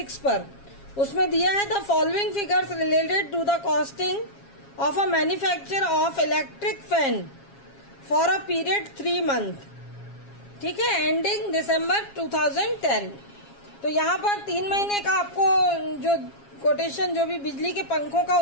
पर, उसमें दिया है the following figures related to the costing of a manufacture of electric fan for a period 3 month, ठीक है, एंडिंग दिसंबर 2010। तो यहाँ पर 3 महीने का आपको जो कोटेशन, जो भी बिजली के पंखों का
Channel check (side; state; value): right; late; 7.3 ms